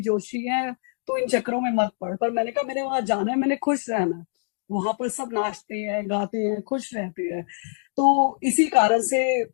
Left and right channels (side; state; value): right; silent; 62 dB below the other